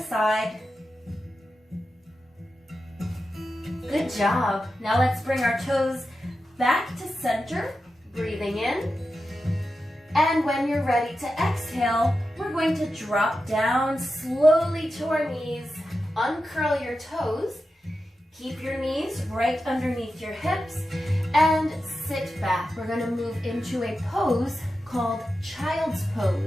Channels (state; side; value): normal; both; correlation 0.91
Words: Good job. Now let's bring our toes back to center, breathing in. And when you're ready to exhale, we're going to drop down slowly to our knees. Uncurl your toes. Keep your knees right underneath your hips and sit back. We're going to move into a pose called child's